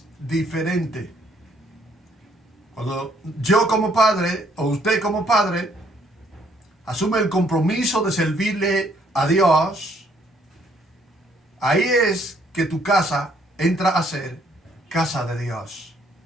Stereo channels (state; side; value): normal; both; correlation 0.67